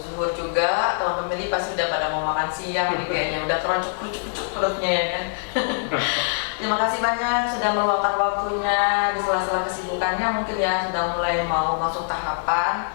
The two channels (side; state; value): right; silent; 57 dB below the other